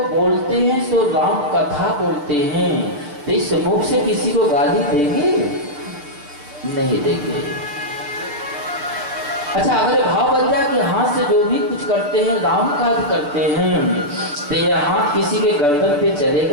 बोलते हैं सो राम कथा बोलते हैं, तो इस मुख से किसी को गाली देंगे? नहीं देंगे। अच्छा, अगर भाव बन जाए कि हाथ से जो भी कुछ करते हैं राम काज करते हैं, तो यह हाथ किसी के गर्दन पे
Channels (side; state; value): left; late; 6.8 ms